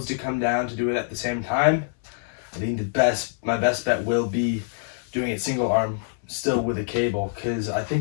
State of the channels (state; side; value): silent; right; 62 dB below the other